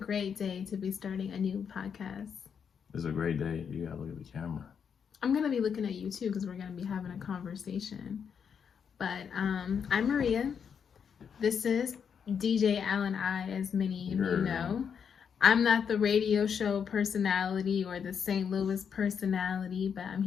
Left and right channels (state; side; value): quieter; right; 7.1 dB